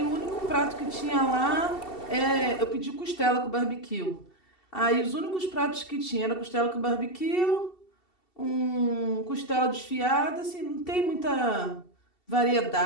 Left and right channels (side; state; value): right; late; 2.7 ms